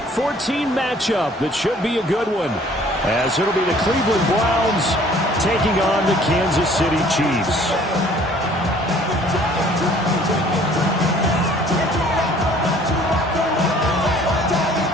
14 matchup that should be a good one, as it'll be the Cleveland Browns taking on the Kansas City Chiefs.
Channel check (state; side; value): normal; both; correlation 0.55